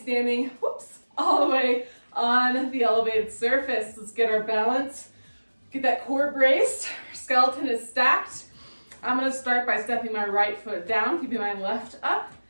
all the way on the elevated surface. Let's get our balance, get that core braced, our skeleton is stacked. I'm gonna start by stepping my right foot down, keeping my left up.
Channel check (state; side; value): inverted; both; correlation -1.00